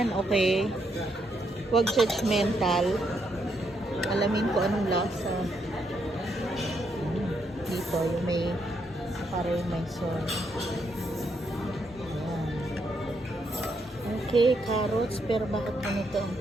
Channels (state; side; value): normal; both; correlation 0.77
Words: okay? Huwag judgmental. Alamin ko anong lasa. Dito, yung may parang may soy. Ayan. Okay, carrots. Pero bakit ganito ang